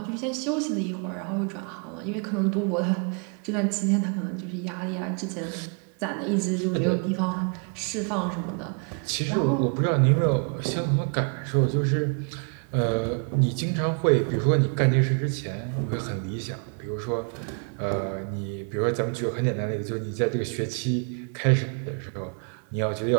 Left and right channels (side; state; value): left; quieter; 39.5 dB